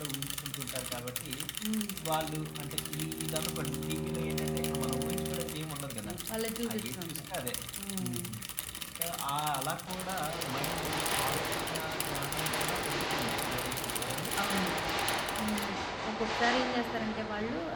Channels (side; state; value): both; identical; correlation 1.00